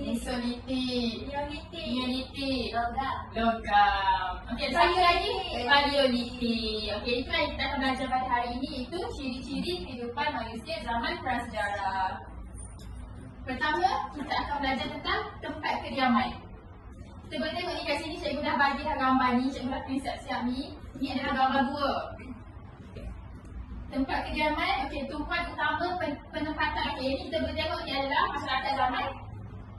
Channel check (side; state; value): both; identical; correlation 1.00